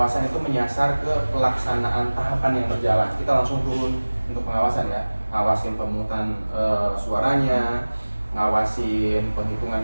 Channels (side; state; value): both; inverted; correlation -1.00